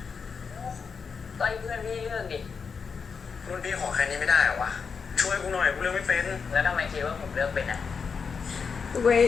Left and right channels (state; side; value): quieter; right; 5.7 dB